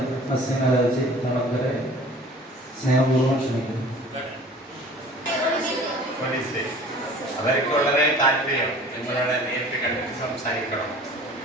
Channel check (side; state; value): both; normal; correlation 0.46